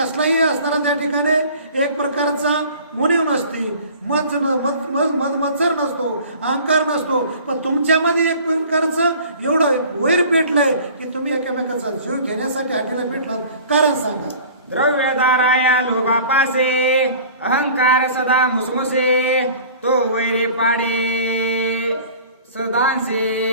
असणारा त्या ठिकाणी एक प्रकारचा मुनीव नसती, मत्सर नसतो, अहंकार नसतो. पण तुमच्यामध्ये एक प्रकारचं एवढं वैर पेटलंय की तुम्ही एकमेकाचा जीव घेण्यासाठी हाटीला पेटला. कारण सांगा? द्रव्यदाराया लोभापासे अहंकार सदा मुसमुसे तो वैरे पाडे सदांसे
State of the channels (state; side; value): inverted; both; correlation -0.45